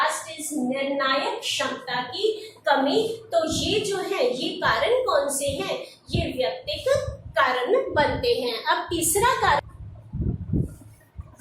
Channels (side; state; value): both; identical; correlation 1.00